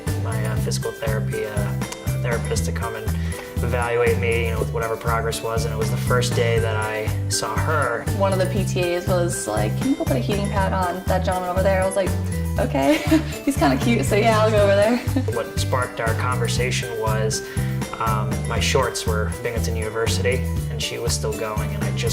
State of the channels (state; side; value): identical; both; correlation 1.00